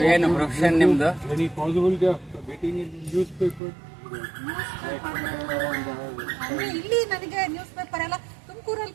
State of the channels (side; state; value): left; drops out; at 3.6 s